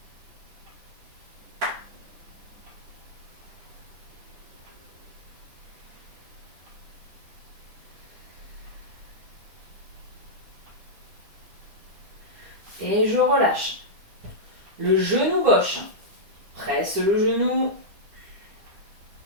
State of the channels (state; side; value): late; left; 9.9 ms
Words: Et je relâche. Le genou gauche. Presse le genou.